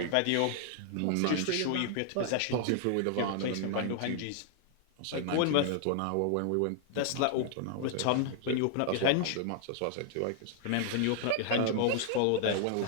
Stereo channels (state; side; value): different; both; correlation 0.00